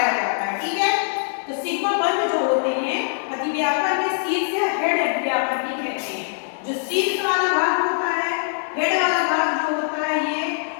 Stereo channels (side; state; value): right; silent; digital silence